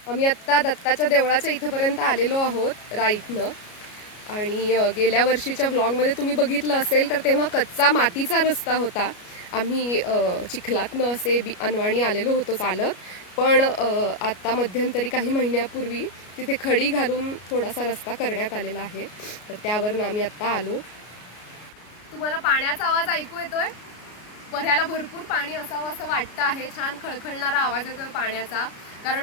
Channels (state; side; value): late; right; 33 ms